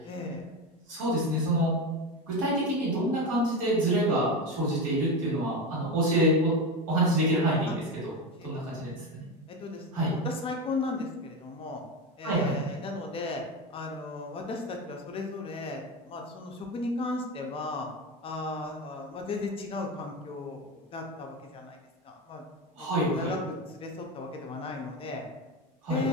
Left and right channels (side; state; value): both; normal; correlation 0.18